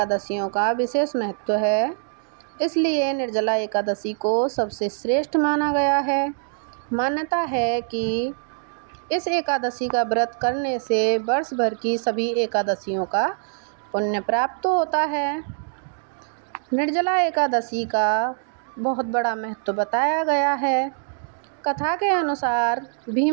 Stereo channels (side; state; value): left; silent; digital silence